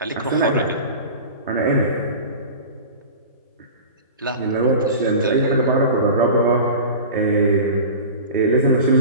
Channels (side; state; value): both; inverted; correlation -0.34